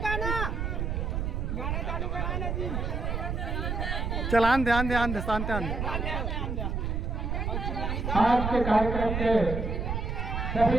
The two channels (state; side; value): noise; right; rumble, 1 dB below the sound